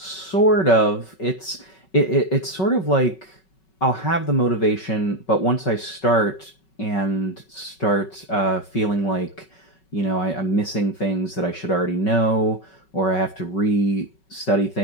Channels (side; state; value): right; late; 5.3 ms